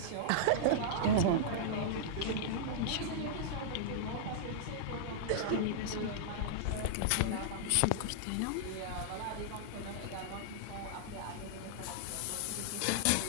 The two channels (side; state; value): both; different; correlation -0.02